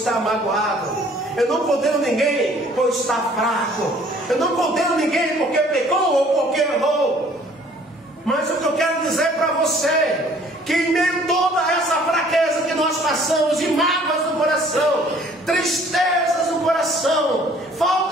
magoado. Eu não condeno ninguém por estar fraco. Eu não condeno ninguém porque pecou ou porque errou. Mas o que eu quero dizer para você, que em meio a toda essa fraqueza que nós passamos, de mágoas no coração, tristezas no coração,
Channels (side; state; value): both; normal; correlation 0.56